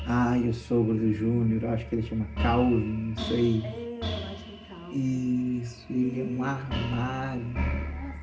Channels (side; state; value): both; identical; correlation 1.00